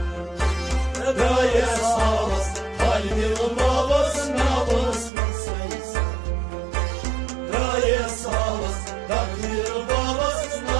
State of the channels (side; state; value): left; drops out; at 5.1 s